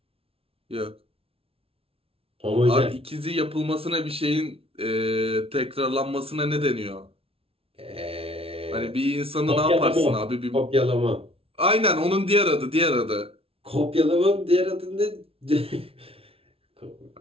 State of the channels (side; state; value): left; late; 0.27 ms